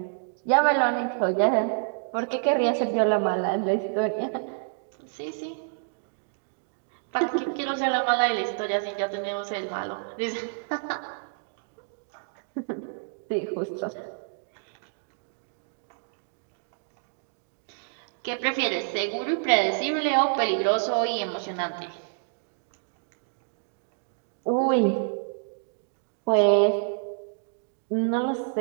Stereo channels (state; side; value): silent; left; digital silence